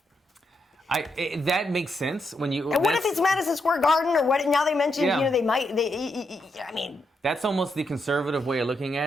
That makes sense when you. And what if it's Madison Square Garden or what? Now they mentioned, they might. I mean, that's almost the conservative way of looking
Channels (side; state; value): both; normal; correlation 0.81